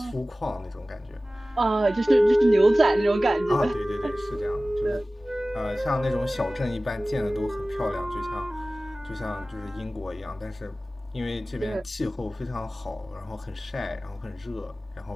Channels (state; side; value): normal; both; correlation 0.97